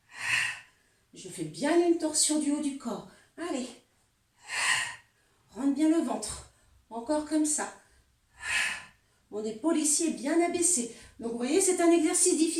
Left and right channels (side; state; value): both; identical; correlation 1.00